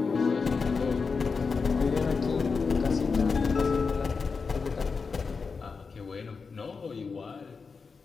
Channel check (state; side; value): quieter; right; 4.9 dB